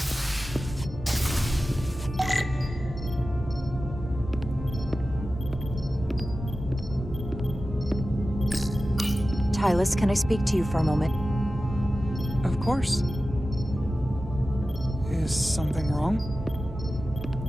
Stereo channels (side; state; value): both; normal; correlation 0.94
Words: Tylus, can I speak to you for a moment? Of course. Is something wrong?